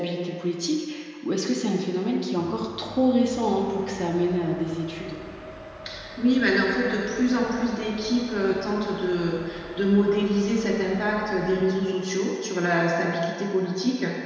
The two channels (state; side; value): identical; both; correlation 1.00